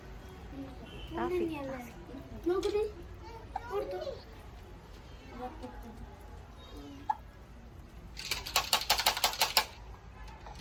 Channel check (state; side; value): identical; both; correlation 1.00